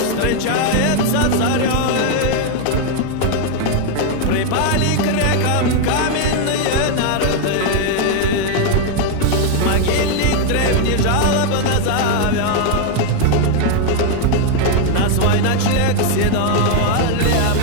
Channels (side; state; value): both; different; correlation 0.01